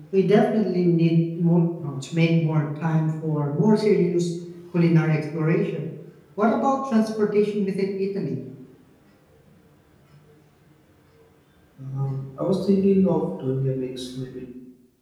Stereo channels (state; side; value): identical; both; correlation 1.00